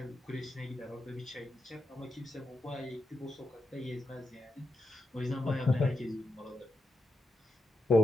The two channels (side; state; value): both; normal; correlation 0.87